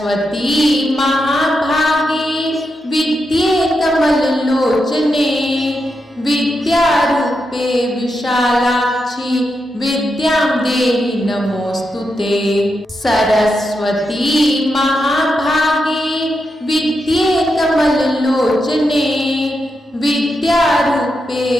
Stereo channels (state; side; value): normal; both; correlation 0.85